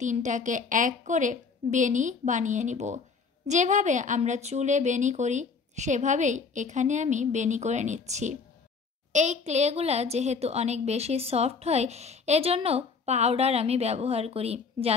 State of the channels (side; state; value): right; quieter; 5.0 dB